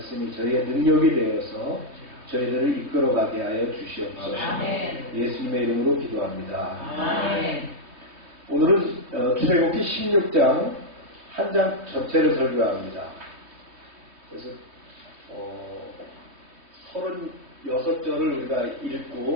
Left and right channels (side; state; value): left; late; 3.1 ms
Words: 저희의 능력이 되어서 저희들을 이끌어가게 하여 주시옵소서. 예수님의 이름으로 기도합니다. 아멘. 오늘은 출애굽기 16장 한 장 전체를 설교합니다. 그래서 36절을 우리가